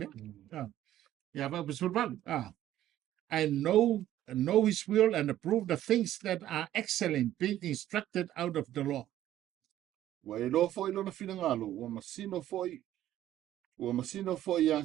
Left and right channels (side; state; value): left; quieter; 12.9 dB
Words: Yeah, but was fun. And know his will and approve the things that are excellent, being instructed out of the law. Wa e loa foi lona finangalo, ua masino foi